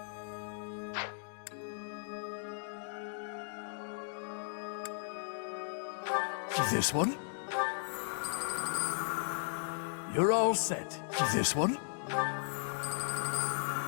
This one? You're all set. This one?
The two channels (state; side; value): silent; right; digital silence